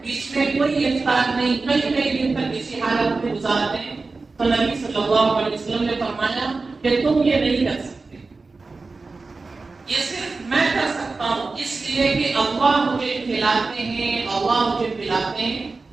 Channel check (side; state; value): left; quieter; 3.9 dB